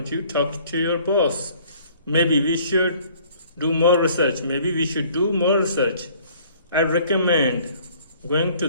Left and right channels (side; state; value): both; inverted; correlation -0.56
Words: you talk to your boss? Maybe we should do more research. Maybe we should do more research. I'd recommend going to